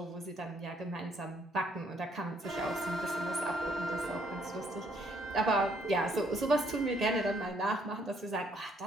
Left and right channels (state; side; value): normal; both; correlation 0.68